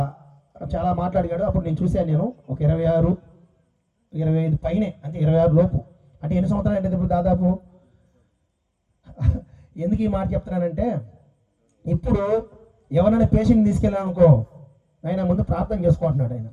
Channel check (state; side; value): identical; both; correlation 1.00